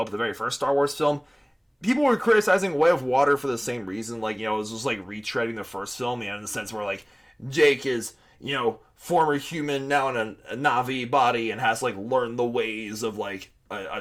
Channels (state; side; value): identical; both; correlation 1.00